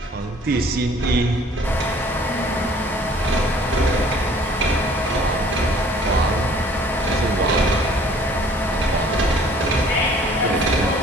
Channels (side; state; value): both; normal; correlation 0.54